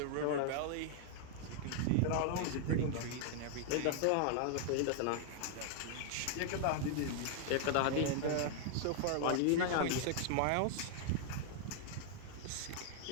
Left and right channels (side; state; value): both; different; correlation -0.01